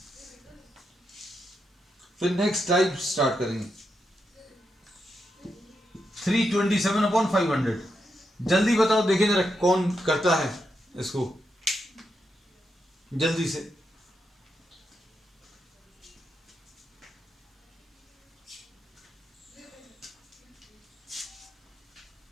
फिर नेक्स्ट टाइप स्टार्ट करेंगे। 327/500, जल्दी बताओ देखें जरा कौन करता है इसको जल्दी से।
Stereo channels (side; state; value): both; normal; correlation 0.84